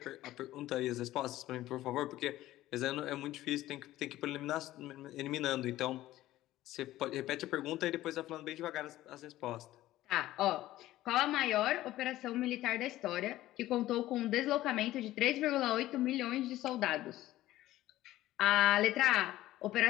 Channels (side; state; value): right; quieter; 15.3 dB